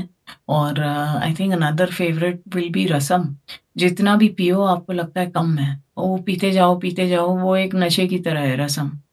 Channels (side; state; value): both; identical; correlation 1.00